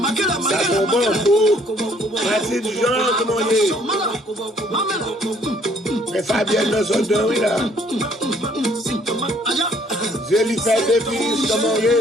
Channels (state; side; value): normal; both; correlation 0.62